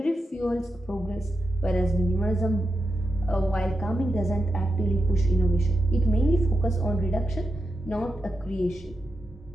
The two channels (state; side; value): normal; both; correlation 0.89